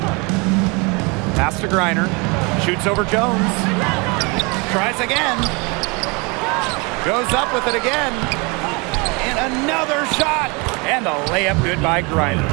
Pass to Griner. Shoots over Jones. Tries again. Goes up with it again. And another shot. And a layup good by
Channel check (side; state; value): left; quieter; 29.1 dB